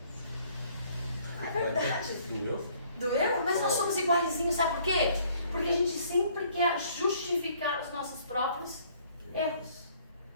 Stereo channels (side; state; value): both; inverted; correlation -0.60